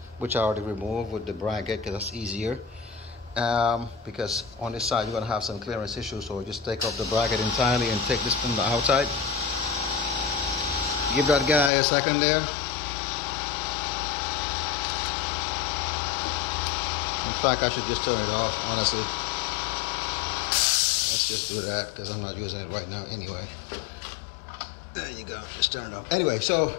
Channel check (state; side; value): drops out; right; at 11.7 s